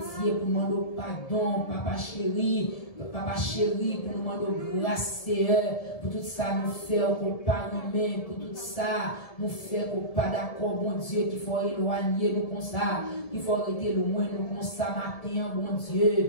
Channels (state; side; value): late; right; 1.7 ms